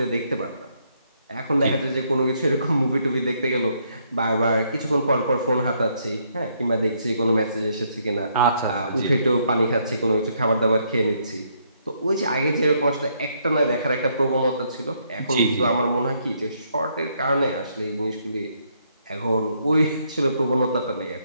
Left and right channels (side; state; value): both; inverted; correlation -0.72